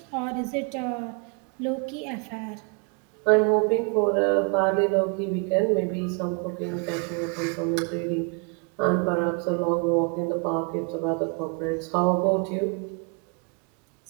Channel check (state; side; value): quieter; left; 34.9 dB